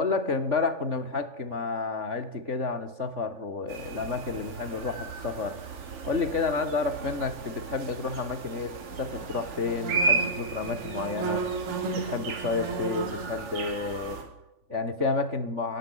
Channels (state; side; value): late; left; 3.5 ms